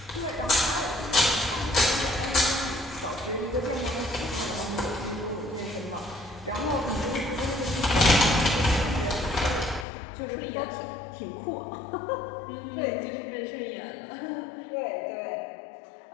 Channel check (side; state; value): right; drops out; at 9.9 s